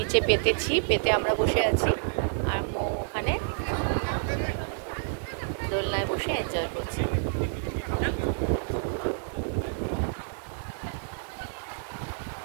পেতে আমরা বসে আছি, আর মৌ ওখানে দোলনায় বসে এনজয় করছি।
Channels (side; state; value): left; silent; digital silence